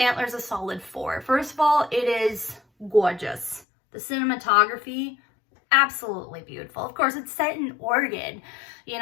Antlers a solid 4. First of all, it is gorgeous. The cinematography, absolutely beautiful. Of course, it's set in Oregon,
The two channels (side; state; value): right; drops out; at 3.7 s